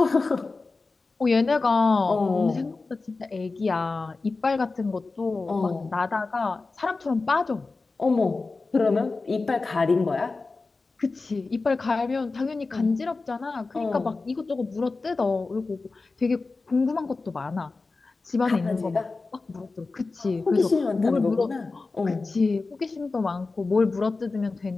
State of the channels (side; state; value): right; quieter; 3.8 dB